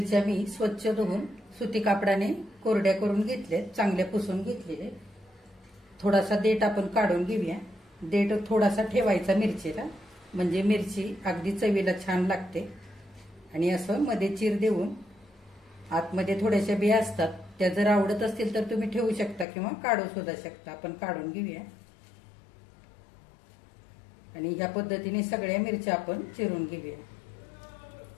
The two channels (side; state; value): right; drops out; at 19.5 s